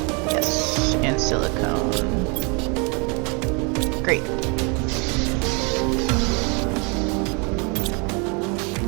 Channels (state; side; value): quieter; left; 32.7 dB